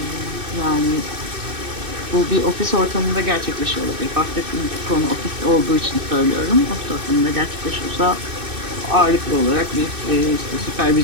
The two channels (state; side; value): late; left; 2.6 ms